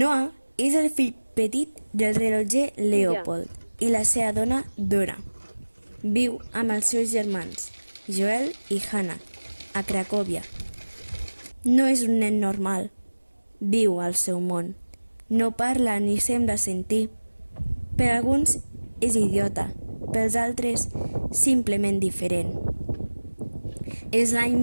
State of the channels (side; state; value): both; inverted; correlation -1.00